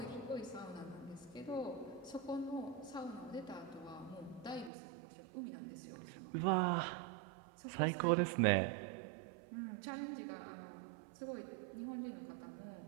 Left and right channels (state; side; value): drops out; left; at 4.7 s